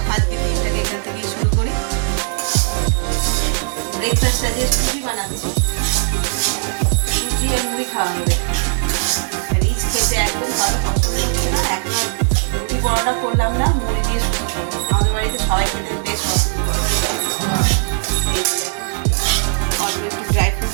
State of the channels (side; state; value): left; silent; digital silence